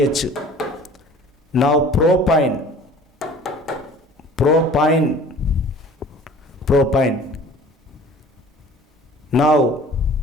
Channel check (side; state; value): both; normal; correlation 0.47